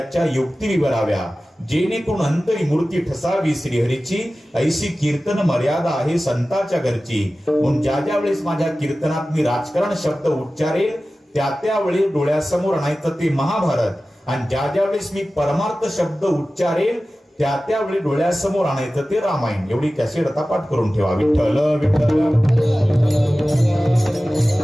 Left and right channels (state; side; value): normal; both; correlation 0.96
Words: युक्ती विवराव्या, जेणेकरून अंतरी मूर्ती ठसावी श्रीहरीची, ऐशी कीर्तन मर्यादा आहे संताच्या घरची. म्हणून ज्या ज्या वेळेस माझ्या कीर्तनात मी राजकारण शब्द उच्चारेल त्या त्यावेळी डोळ्यासमोर आणायचं ते महाभारत, आणि ज्या ज्या वेळेस मी परमार्थ शब्द उच्चारेल त्या त्यावेळी डोळ्यासमोर आणायचं ते रामायण. एवढी कॅसेट आता पाठ करून ठेवा. विठ्ठल विठ्ठल.